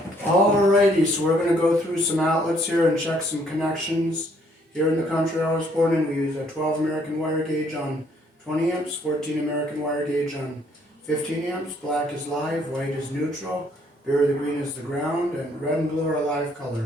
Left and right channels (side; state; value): both; normal; correlation 0.66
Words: Alrighty, so we're going to go through some outlets here and check some connections. Here in the country I was born in, we use a 12 American wire gauge on 20 amps, 14 American wire gauge on 15 amps. Black is live, white is neutral, berry the green is the ground, and red and blue are live